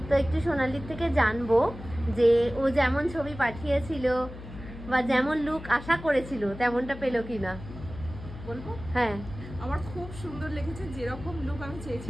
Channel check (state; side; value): noise; left; hum, 13 dB below the sound